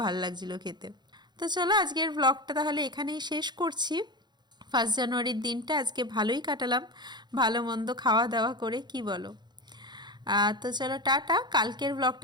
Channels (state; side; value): late; left; 0.21 ms